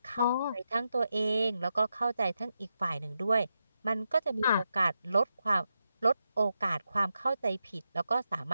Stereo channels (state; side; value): inverted; both; correlation -0.86